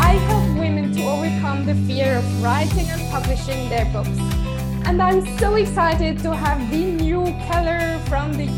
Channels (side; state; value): both; identical; correlation 1.00